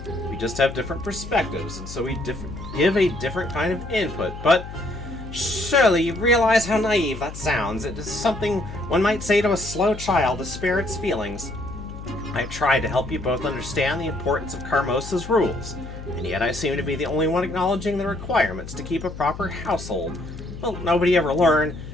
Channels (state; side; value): noise; left; hum, 11 dB below the sound